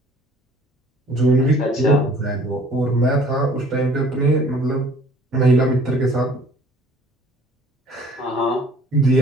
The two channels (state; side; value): normal; both; correlation 0.54